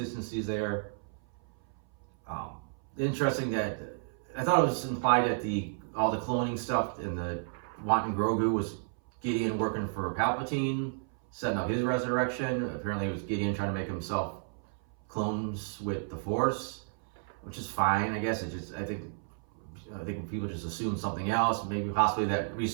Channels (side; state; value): left; silent; 56 dB below the other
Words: there. Interesting that I thought it was implied that all the cloning stuff and the wanting Grogu was Gideon working for Palpatine, setting up his resurrection. Apparently, it was Gideon trying to make himself clones with the Force, which is fine, I guess. I think people just assume something else. Maybe possibly that